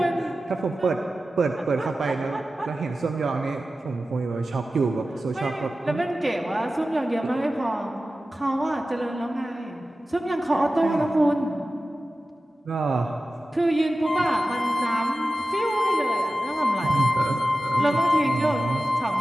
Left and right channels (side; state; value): both; normal; correlation 0.95